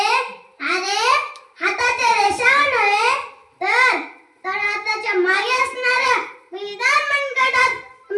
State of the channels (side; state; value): both; identical; correlation 1.00